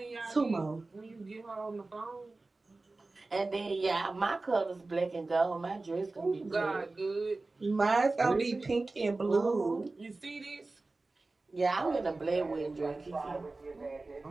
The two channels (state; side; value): quieter; left; 3.3 dB